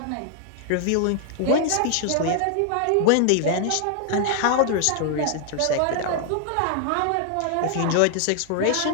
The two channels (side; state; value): both; different; correlation 0.00